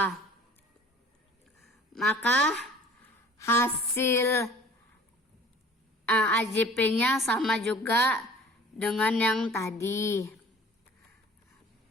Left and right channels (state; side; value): normal; both; correlation 0.48